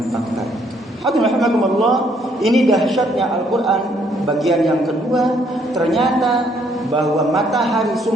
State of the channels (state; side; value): normal; both; correlation 0.67